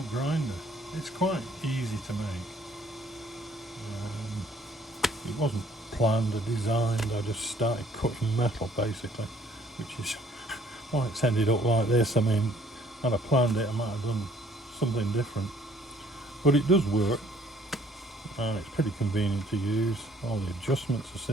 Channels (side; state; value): both; normal; correlation 0.60